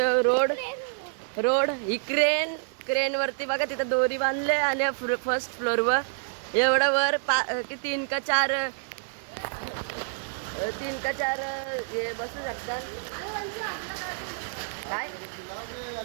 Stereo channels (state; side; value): silent; left; digital silence